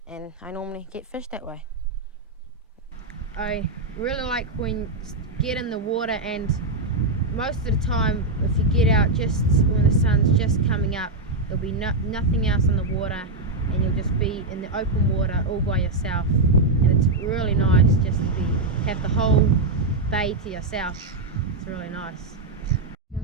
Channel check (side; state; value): left; quieter; 3.1 dB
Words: and I normally get fish that way. I really like when you get in the water, and most of the time if you get out just when the sun's just coming up, there'll be nothing else on the water, and you'll just be in the open water all by yourself, and it's really nice just to have the whole bay to yourself. It's really nice.